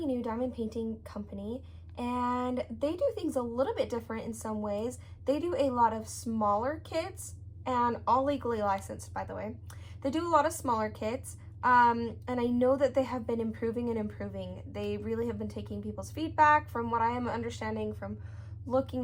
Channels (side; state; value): both; identical; correlation 1.00